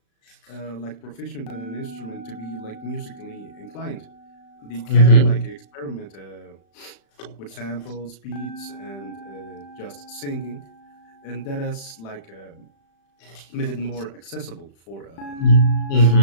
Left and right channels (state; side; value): late; right; 36 ms